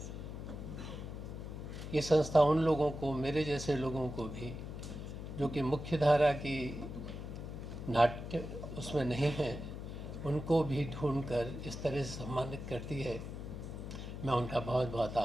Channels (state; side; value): noise; left; hum, 8 dB below the sound